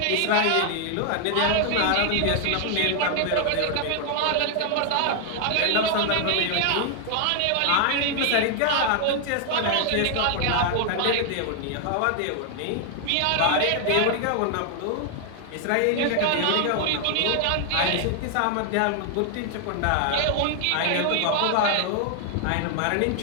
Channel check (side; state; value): both; different; correlation 0.00